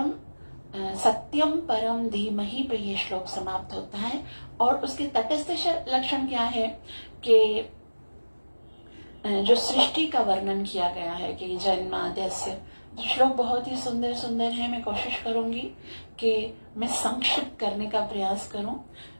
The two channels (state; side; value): inverted; both; correlation -1.00